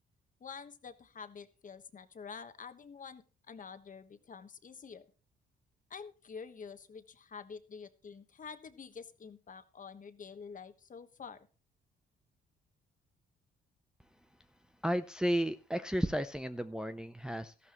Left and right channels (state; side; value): normal; both; correlation 0.87